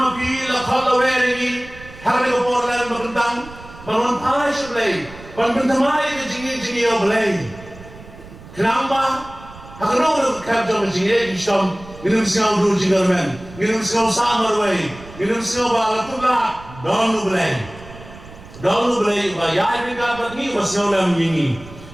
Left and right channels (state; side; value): noise; right; rumble, 18 dB below the sound